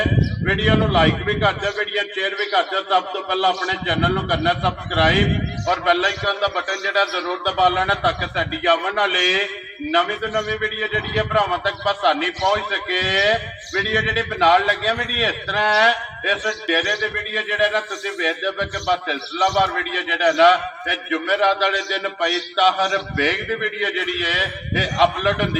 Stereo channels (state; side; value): identical; both; correlation 1.00